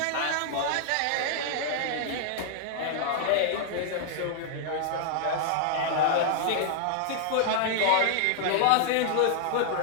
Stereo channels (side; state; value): both; different; correlation -0.01